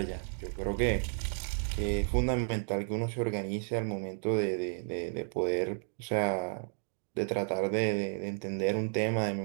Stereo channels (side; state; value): left; silent; digital silence